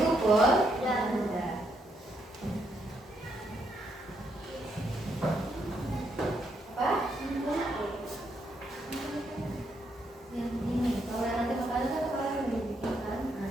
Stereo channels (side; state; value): both; normal; correlation 0.77